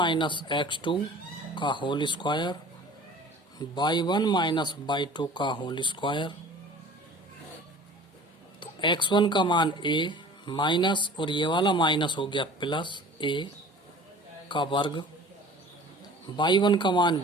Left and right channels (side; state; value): both; normal; correlation 0.44